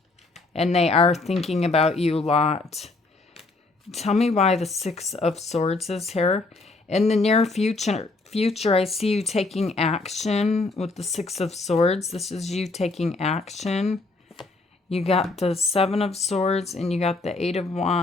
And they are thinking about you a lot. Tell me why the Six of Swords is here. In the near future, future, I see you taking action with the Six of Swords. This is you taking action. You got the Seven of Swords, and you got the Eight of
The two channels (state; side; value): quieter; right; 3.4 dB